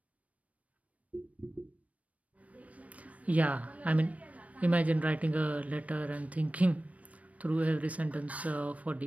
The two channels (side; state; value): left; late; 0.067 ms